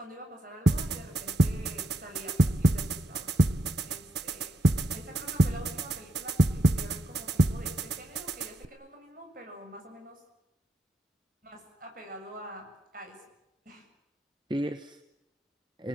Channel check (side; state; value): both; normal; correlation 0.82